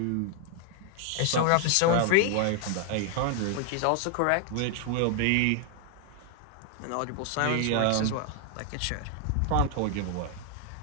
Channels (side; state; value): both; different; correlation 0.00